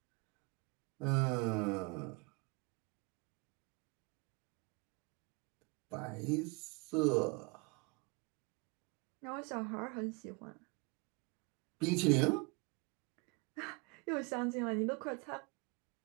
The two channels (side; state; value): left; quieter; 28.6 dB